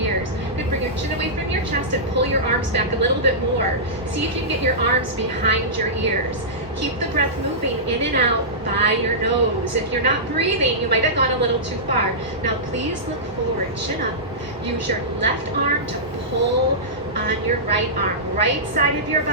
Good, bring your chin away from your chest and pull your arms back a little bit more. See if you can get your arms behind your ears. Keep the breath moving in and out by your nose. If you're not breathing, you might have gone a little too far. Now please look forward, chin up. Use your left arm to pull on your right arm. Right side of your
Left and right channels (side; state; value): both; normal; correlation -0.16